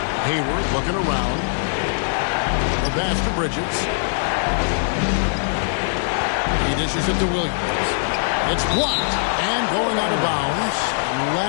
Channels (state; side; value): silent; right; digital silence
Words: Hayward looking around. The pass to Bridges. He dishes it to Williams. It's blocked and going out of bounds.